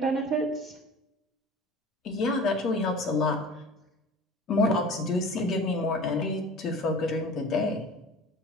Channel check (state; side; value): normal; both; correlation 0.40